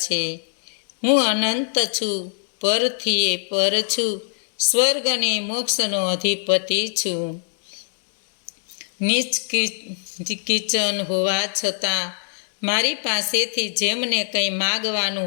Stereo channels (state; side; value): silent; right; digital silence